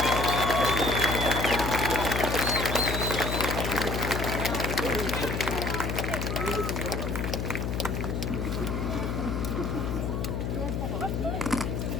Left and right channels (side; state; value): left; noise; hum, 1 dB below the sound